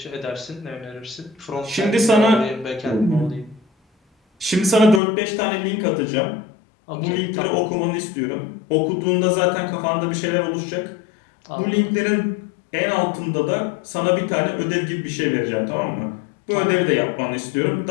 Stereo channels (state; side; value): drops out; right; at 5.0 s